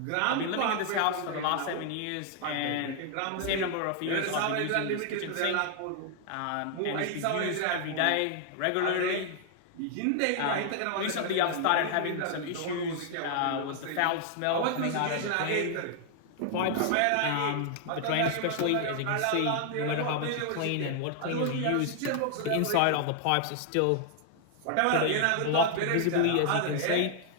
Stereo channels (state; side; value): different; both; correlation 0.00